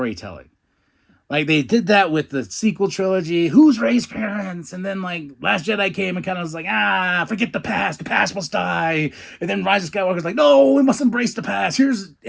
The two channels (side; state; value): both; identical; correlation 1.00